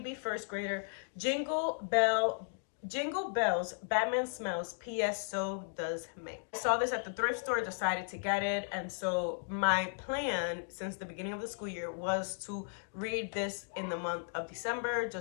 First Grader, Jingle Bells, Batman Smells, P.S. So Does May. I saw this at the thrift store, decided to get it, and so my plan since the beginning of the school year was to read this in the month of December,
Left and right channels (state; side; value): silent; right; digital silence